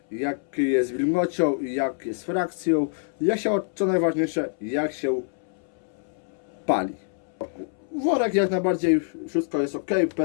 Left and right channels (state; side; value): silent; right; 61 dB below the other